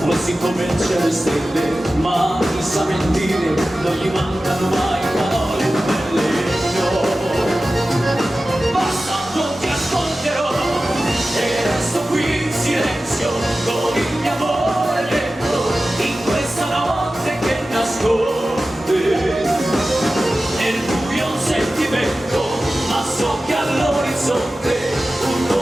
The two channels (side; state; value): both; normal; correlation 0.95